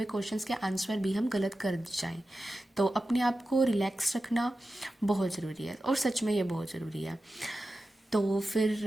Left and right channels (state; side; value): normal; both; correlation 0.93